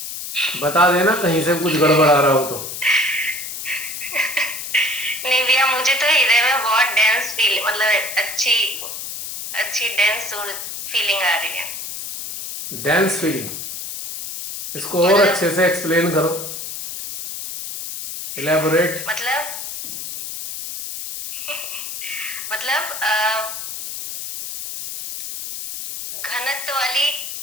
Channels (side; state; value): left; noise; hiss, 7 dB below the sound